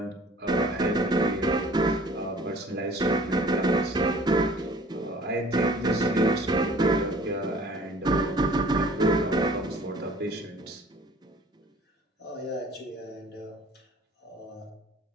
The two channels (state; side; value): normal; both; correlation 0.51